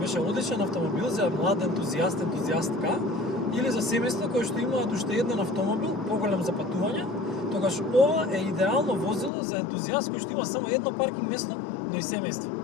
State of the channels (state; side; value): drops out; right; at 9.3 s